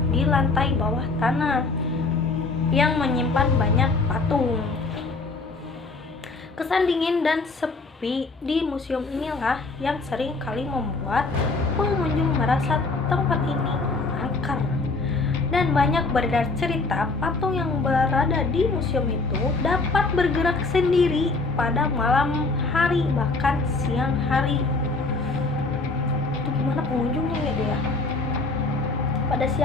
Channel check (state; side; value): quieter; right; 3.6 dB